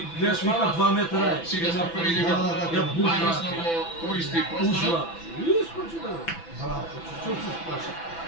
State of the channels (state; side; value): late; right; 6.0 ms